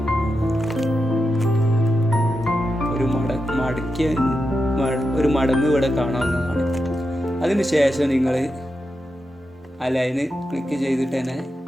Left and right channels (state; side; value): normal; both; correlation 0.88